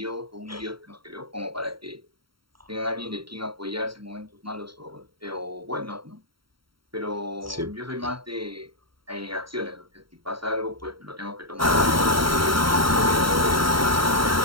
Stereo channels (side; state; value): left; late; 0.74 ms